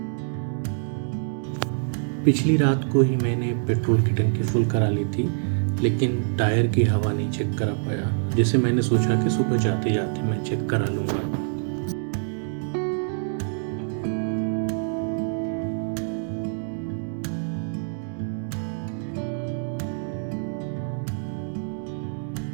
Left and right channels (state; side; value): silent; left; digital silence